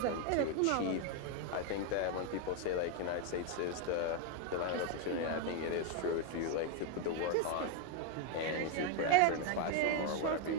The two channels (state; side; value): different; both; correlation 0.01